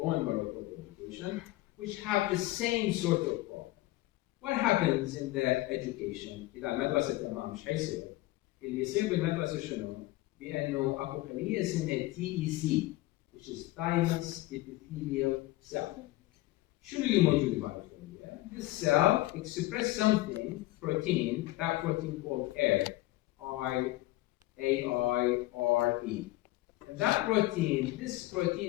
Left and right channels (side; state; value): right; quieter; 18.2 dB